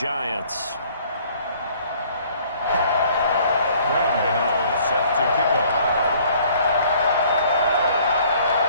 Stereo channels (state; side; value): inverted; both; correlation -0.58